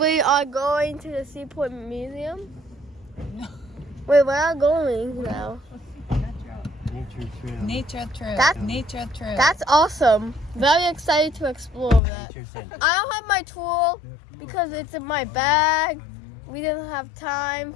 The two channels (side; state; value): right; drops out; at 12.0 s